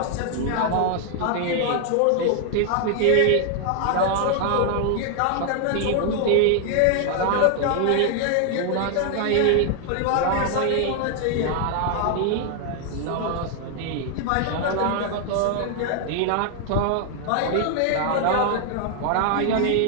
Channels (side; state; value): both; different; correlation 0.00